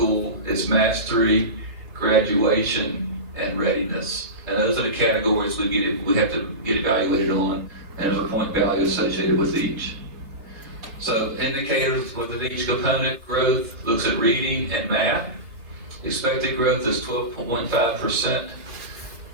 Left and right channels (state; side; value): late; left; 3.9 ms